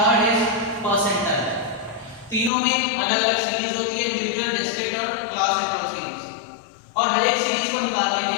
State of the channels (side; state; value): right; drops out; at 2.5 s